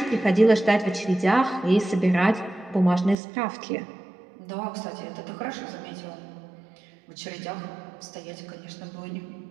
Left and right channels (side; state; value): left; drops out; at 3.2 s